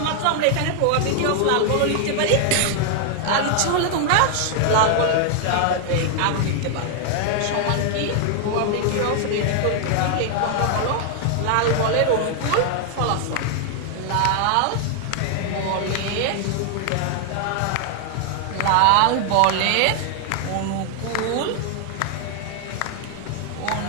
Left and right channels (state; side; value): different; both; correlation 0.00